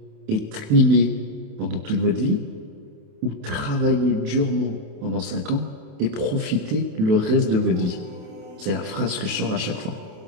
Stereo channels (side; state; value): left; late; 28 ms